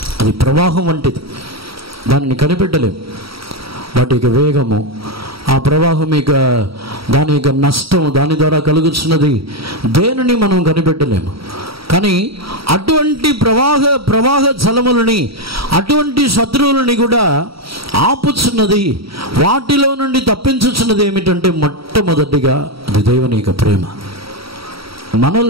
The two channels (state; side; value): late; left; 0.75 ms